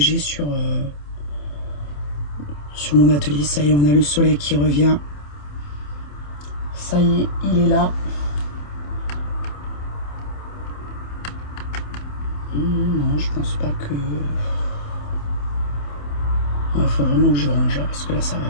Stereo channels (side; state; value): right; late; 27 ms